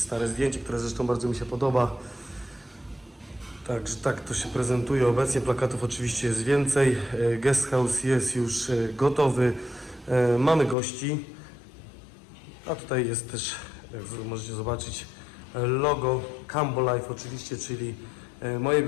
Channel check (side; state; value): right; drops out; at 10.8 s